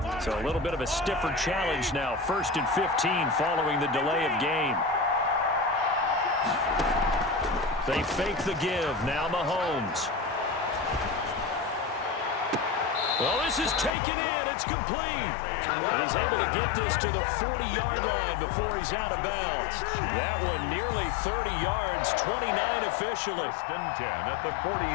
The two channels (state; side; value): drops out; right; at 14.0 s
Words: So a little bit of a stiffer challenge now. 1st and 15 following the delay of game. They fake the give. Now Mahomes. Well, this is taken in. It's complete. And he's able to get this to the 40-yard line before he's out of bounds. That one nearly 30 yards, 29 officially. 1st and 10 at the